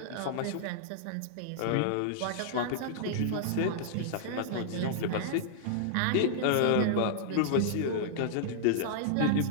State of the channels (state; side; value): different; both; correlation -0.01